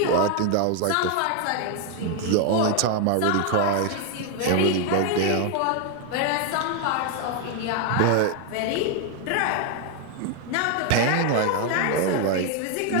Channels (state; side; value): different; both; correlation 0.01